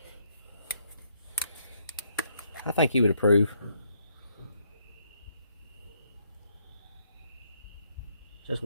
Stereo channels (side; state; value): both; inverted; correlation -0.72